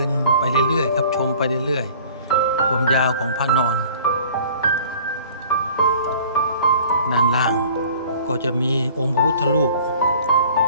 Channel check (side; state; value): both; inverted; correlation -0.49